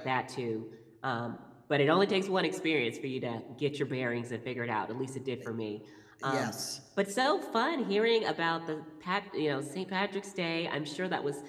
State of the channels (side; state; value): both; identical; correlation 1.00